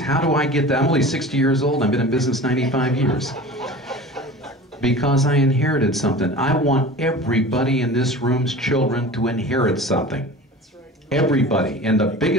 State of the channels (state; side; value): normal; both; correlation 0.37